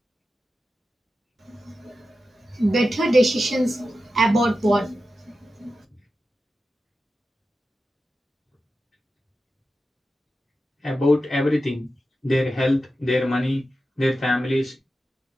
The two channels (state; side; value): normal; both; correlation 0.92